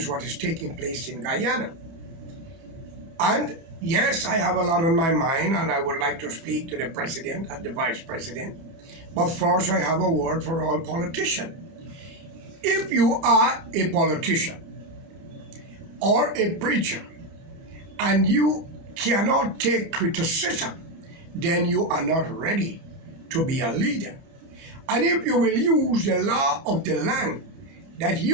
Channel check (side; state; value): left; late; 30 ms